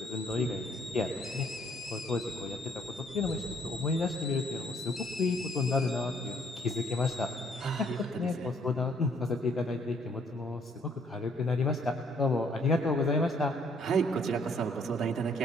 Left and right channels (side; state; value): both; normal; correlation 0.65